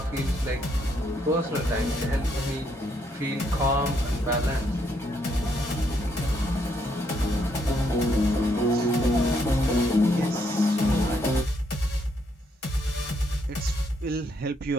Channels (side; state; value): both; normal; correlation 0.73